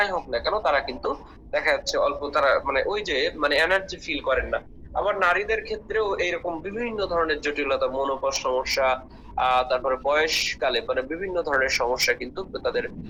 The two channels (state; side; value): identical; both; correlation 1.00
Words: হোক না কেন তারা কিন্তু দেখা যাচ্ছে অল্প, তারা মানে ওই যে মানে এনার্জি ফিল করেন না। আবার নারীদের ক্ষেত্রেও এইরকম বিভিন্ন ধরনের জটিলতা, মনোপজ সমস্যা, তারপরে বয়সকালে মানে বিভিন্ন ধরনের সমস্যা কিন্তু তাদের